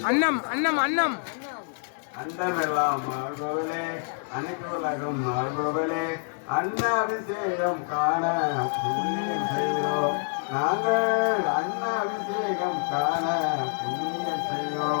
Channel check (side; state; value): right; silent; digital silence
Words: அன்னம் அன்னம் அன்னம் அண்டமெல்லாம் மாறுபவளே அனைத்து உலகம் மாறுபவளே அன்ன அபிஷேகம் காண புண்ணியம் செய்கிறோம் நாங்கள் அன்ன அபிஷேகம் காண புண்ணியம்